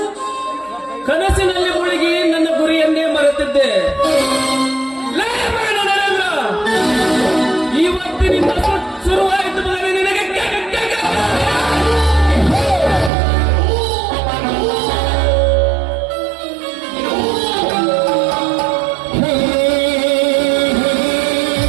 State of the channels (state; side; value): drops out; left; at 13.1 s